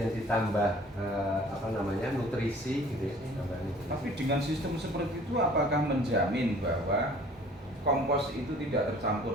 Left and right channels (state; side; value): normal; both; correlation 0.51